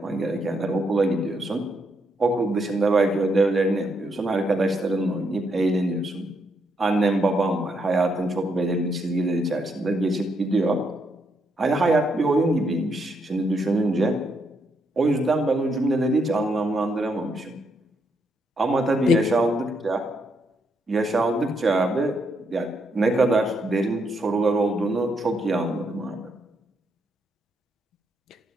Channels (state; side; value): normal; both; correlation 0.77